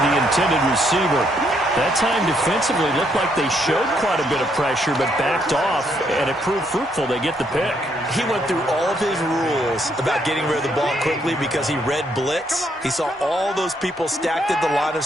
the intended receiver. That time defensively looked like they showed quite a bit of pressure but backed off, and it proved fruitful. They get the pick. He went through all of his rules about getting rid of the ball quickly because he read blitz. He saw all those people stacked at the line of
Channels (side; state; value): both; normal; correlation 0.73